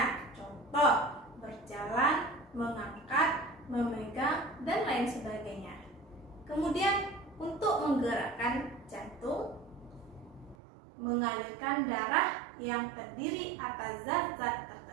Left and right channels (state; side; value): drops out; left; at 10.6 s